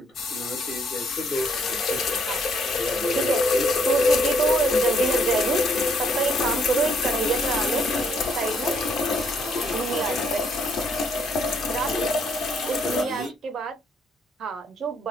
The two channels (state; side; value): normal; both; correlation 0.70